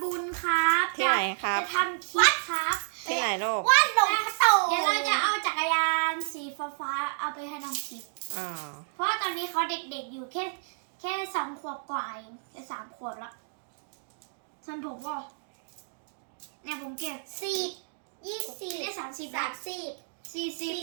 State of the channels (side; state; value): left; silent; digital silence